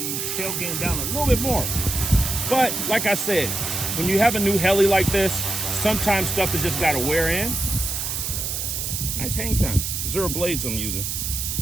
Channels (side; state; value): right; noise; hiss, 3 dB below the sound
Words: tail gain down a little bit more. But like I said, when you have a new heli like this, sometimes stuff has just got to wear in. Nice hang time. 0 blades I'm using.